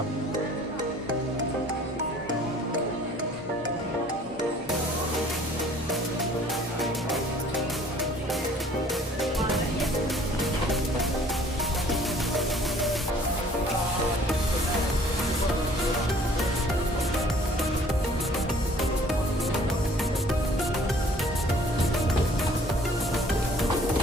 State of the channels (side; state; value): both; normal; correlation 0.54